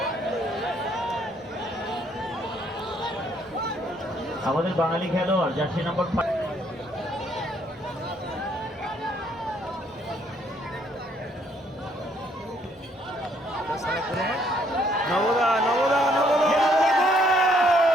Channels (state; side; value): normal; both; correlation 0.67